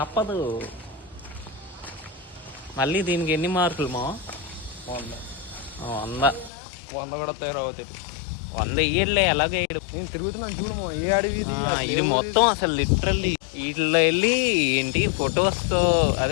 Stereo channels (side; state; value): right; drops out; at 6.5 s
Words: మళ్ళీ దీనికి ఎన్ని మార్కులు మా? 100. 100 కూడా తయారవుతుంది. 100 ఇయ్యలే, ఎలాగే నేను తిరుగుతున్నాను చూడము. ఏ అడవి ఇది మొత్తం అసలు లిటరల్లీ వీటిలో వెళ్ళి ఏంటి ఫొటోస్తో,